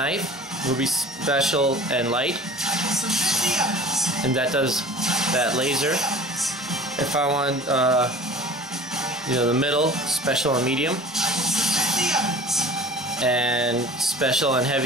it will be special and light, and that does that laser. If I want, the middle, special and medium, and special and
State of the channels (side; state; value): both; normal; correlation 0.42